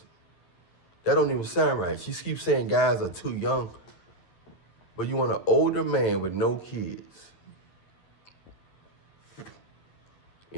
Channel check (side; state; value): right; late; 11 ms